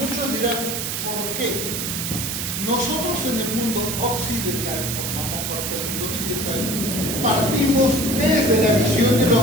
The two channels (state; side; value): noise; right; hiss, 3 dB below the sound